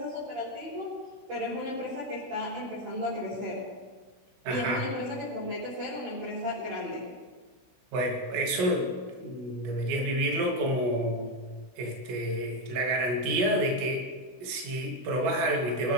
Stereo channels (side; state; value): left; late; 16 ms